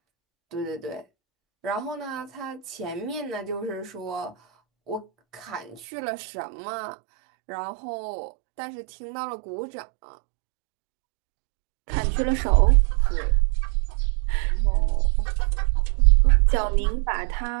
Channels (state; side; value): drops out; left; at 5.8 s